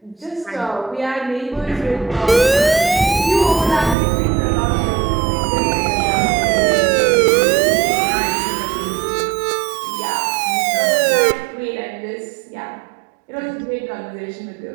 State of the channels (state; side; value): drops out; left; at 4.0 s